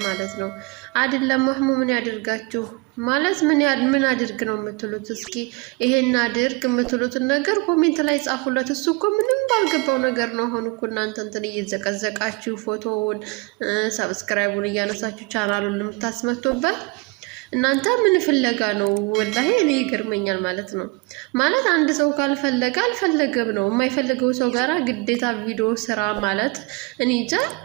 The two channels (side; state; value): left; quieter; 27.4 dB